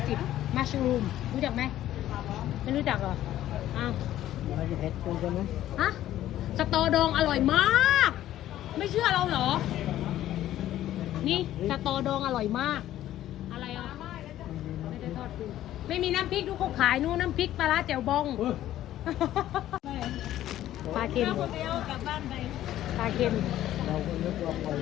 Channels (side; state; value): right; quieter; 13.1 dB